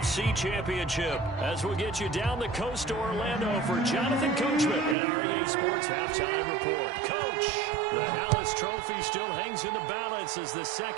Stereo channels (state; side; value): drops out; left; at 5.0 s